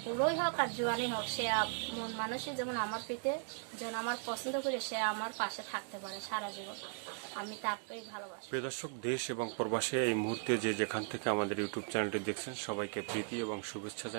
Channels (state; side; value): silent; left; 53 dB below the other